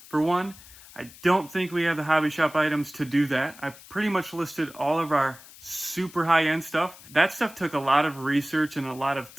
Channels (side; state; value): left; noise; hiss, 20 dB below the sound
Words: For one, I don't think we have the hobby shop items to do that. I pretty much listed all of our super high-end stuff. That stuff took a lot of research and a lot of